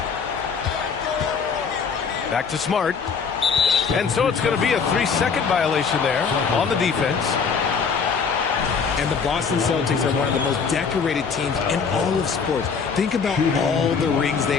Back to Smart. And so it's going to be a 3-second violation there on the defense. And the Boston Celtics are one of the most decorated teams in all of sports. Think about all the rings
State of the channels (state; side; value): quieter; right; 5.8 dB